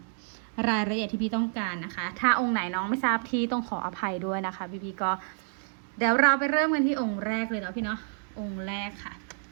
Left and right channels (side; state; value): left; silent; digital silence